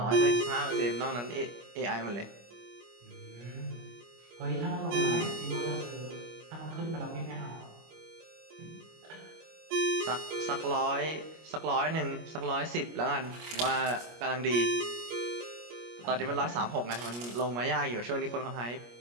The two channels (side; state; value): left; late; 25 ms